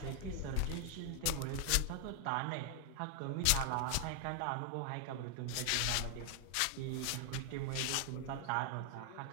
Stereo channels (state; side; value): different; both; correlation 0.00